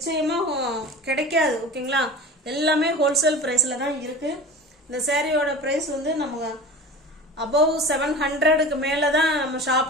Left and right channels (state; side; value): normal; both; correlation 0.36